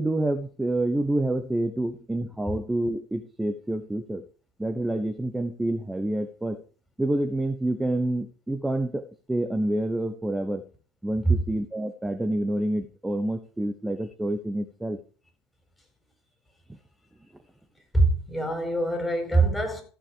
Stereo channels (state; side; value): normal; both; correlation 0.90